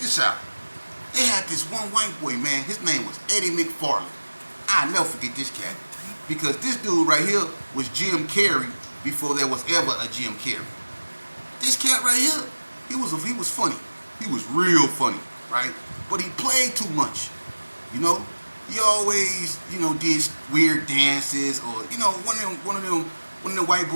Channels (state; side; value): inverted; both; correlation -1.00